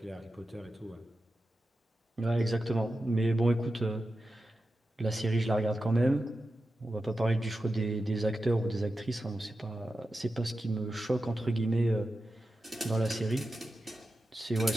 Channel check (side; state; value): both; normal; correlation 0.92